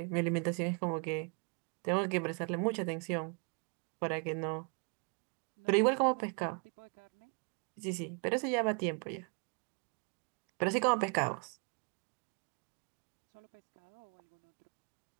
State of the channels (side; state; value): left; quieter; 38.1 dB